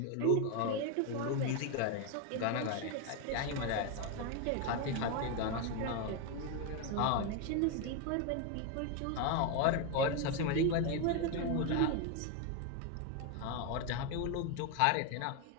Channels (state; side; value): different; both; correlation 0.01